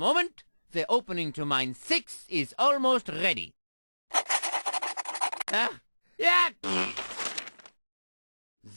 the opening to mine sixth is almost ready. Yeah.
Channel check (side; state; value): both; inverted; correlation -1.00